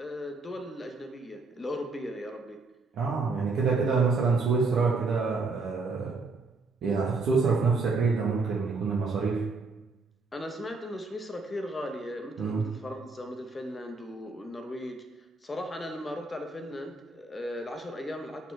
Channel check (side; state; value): left; quieter; 3.8 dB